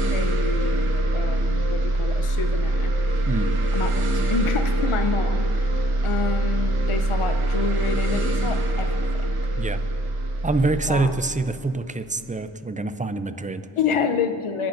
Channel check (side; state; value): both; normal; correlation 0.63